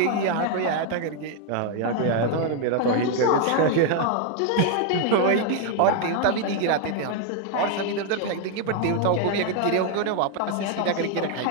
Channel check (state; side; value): different; both; correlation 0.01